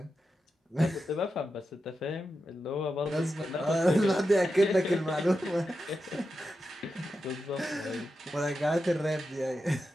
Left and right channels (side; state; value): both; normal; correlation 0.89